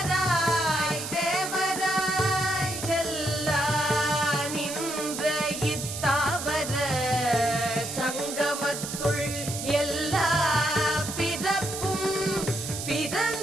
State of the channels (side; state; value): right; noise; hiss, 6 dB below the sound